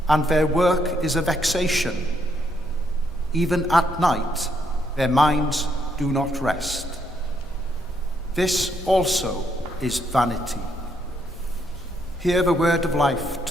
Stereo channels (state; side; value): normal; both; correlation 0.74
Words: and their work is a vexation. Even at night their minds do not rest. This also is vanity. Hear the word of life